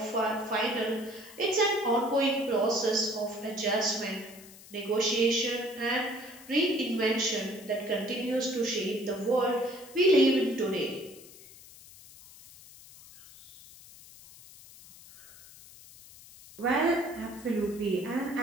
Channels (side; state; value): left; noise; hiss, 20 dB below the sound